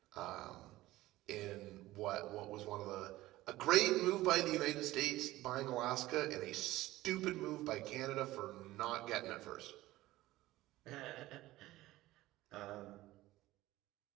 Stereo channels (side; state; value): left; quieter; 17.0 dB